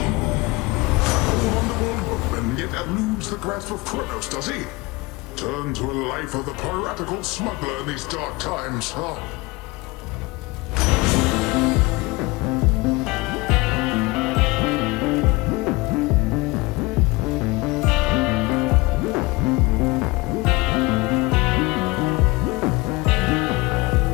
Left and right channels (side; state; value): right; quieter; 23.2 dB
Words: Yet eludes the grasp of Kronos, does he? Turn to a life of the piratical smuggler in these dark times, huh?